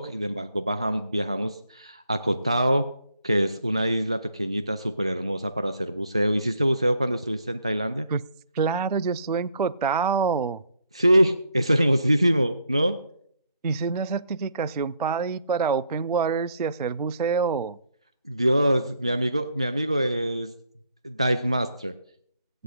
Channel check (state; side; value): inverted; both; correlation -0.71